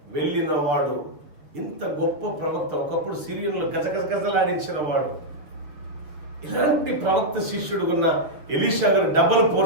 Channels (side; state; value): left; late; 6.9 ms